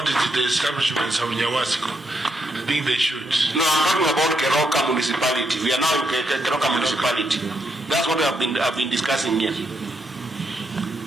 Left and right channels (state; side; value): normal; both; correlation 0.79